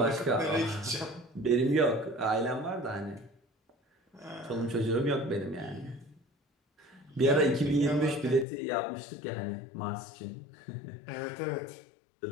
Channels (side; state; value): right; drops out; at 8.5 s